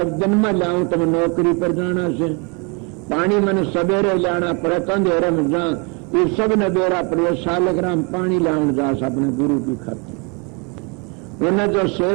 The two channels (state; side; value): quieter; left; 32.5 dB